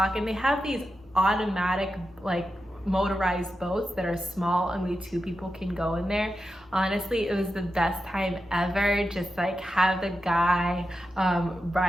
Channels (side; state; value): both; normal; correlation 0.90